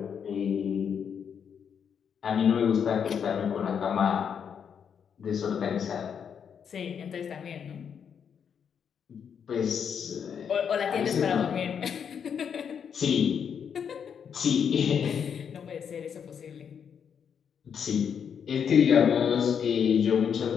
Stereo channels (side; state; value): right; quieter; 7.5 dB